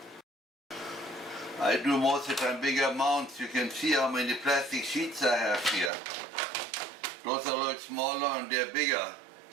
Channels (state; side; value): drops out; left; at 5.9 s